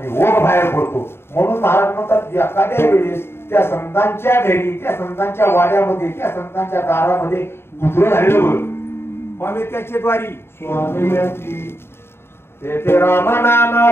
ओघ बाहेर पडतो म्हणून महाराज म्हणतात एखाद्या वेळेस त्या संतांच्या घरी त्या संतांच्या वाड्यामध्ये त्या संतांच्या दारामध्ये गुजर झालेलं बघ स्वामी त्याचे द्वारी स्वामी ते राम नाम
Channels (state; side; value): late; right; 0.12 ms